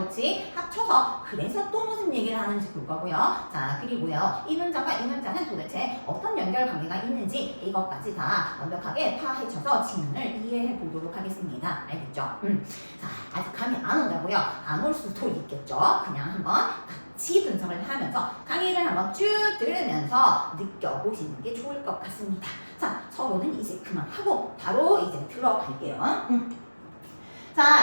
그치? 합쳐서 그래서 또 무슨 얘기를 하는지 볼 거고요. 자, 그리고요. 이 문장과 이 문장은 도대체 어떤 연결 관계가 있는지 이것까지 다 완벽하게 파헤쳐서 지문을 이해해 보도록 하겠습니다. 알겠죠? 자, 아직 감이 안 온다고요? 안 올 수도 있겠죠? 그냥 한번 같이 분석을 하면서 강의를 한번 쭉 들으면서 느껴보시는 게 좋을 것 같습니다. 자, 서로는 이제 그만하고 바로 이제 들어갈게요.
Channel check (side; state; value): both; inverted; correlation -1.00